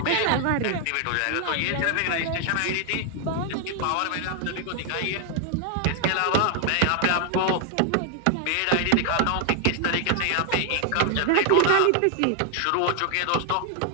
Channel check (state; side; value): different; both; correlation 0.00